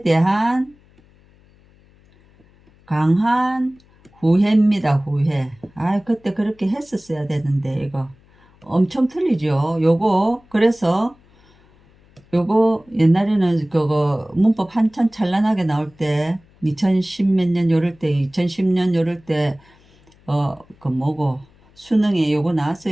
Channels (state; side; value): noise; left; hum, 30 dB below the sound